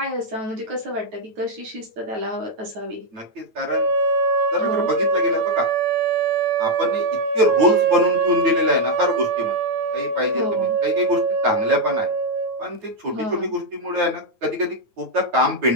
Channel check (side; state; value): left; late; 9.1 ms